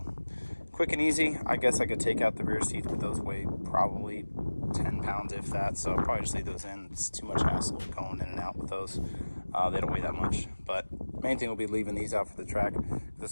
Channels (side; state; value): both; inverted; correlation -1.00